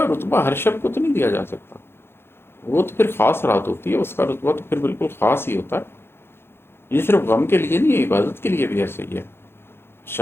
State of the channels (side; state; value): right; late; 0.11 ms